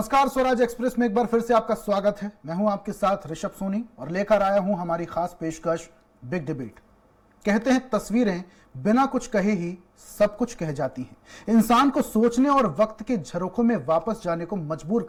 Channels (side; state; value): both; identical; correlation 1.00